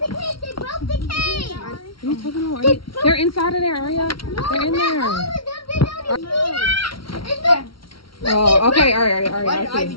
the cage. They broke the cage. What are you talking about? They're inside of there, Aria. They're in there. Oh, okay. All right. I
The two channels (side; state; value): right; late; 0.74 ms